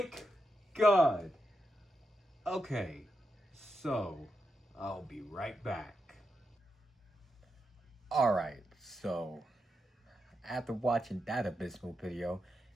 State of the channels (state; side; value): normal; both; correlation 0.85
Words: God. Okay, so I'll be right back. Alright, so after watching that abysmal video,